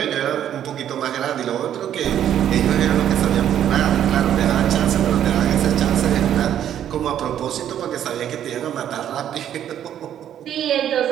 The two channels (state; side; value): quieter; left; 10.4 dB